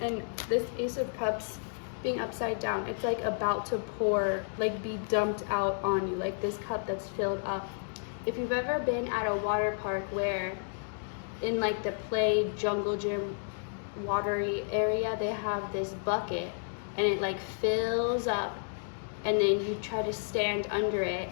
And this Ace of Cups being upside down, it's like about to pour, like be dumped out on you, like this cup that's filled up. If you've ever been at a water park where in like the play jungle gym watery area, they have this bucket and it like fills up, and then you try to stand under it,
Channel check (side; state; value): right; silent; digital silence